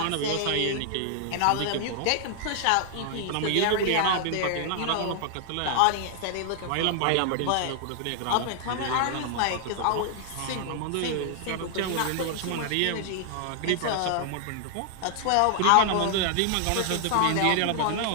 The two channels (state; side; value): different; both; correlation 0.00